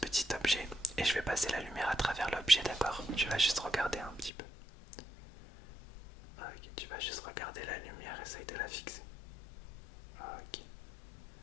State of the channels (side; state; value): right; drops out; at 4.3 s